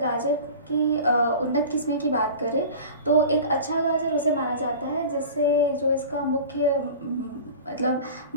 की उन्नत किस्में की बात करें तो एक अच्छा गाजर उसे माना जाता है जिससे जो इसका मुख्य मतलब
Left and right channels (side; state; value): both; inverted; correlation -0.37